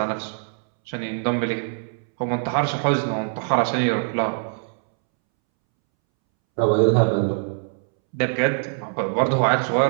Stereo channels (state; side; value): silent; left; 63 dB below the other